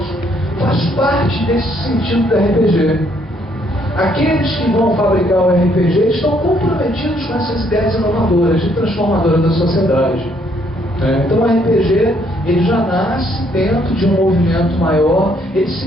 faz parte desse sentido do RPG. Aqueles que vão fabricar o RPG estão comprometidos com essas ideias inovadoras, de transformadora da sociedade. Então o RPG ele já nasce dentro de um movimento maior, ele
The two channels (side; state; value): both; normal; correlation 0.68